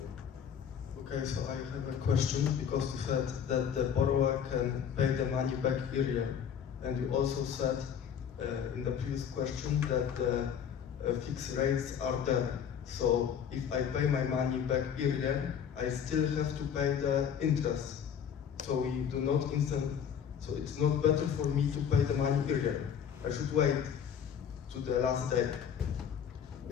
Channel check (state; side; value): quieter; right; 8.1 dB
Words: Okay, so I have a question, because you said that the borrower can pay the money back earlier, and you also said in the previous question that the fixed rates are there. So if I pay my money back earlier, I still have to pay the interest. So we do not so it's not better for me to pay the money earlier. I should wait to the last day.